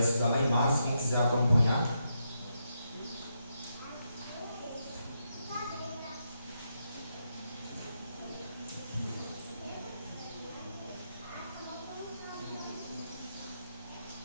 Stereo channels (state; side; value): inverted; both; correlation -0.82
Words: lá em Marcos, quem quiser acompanhar.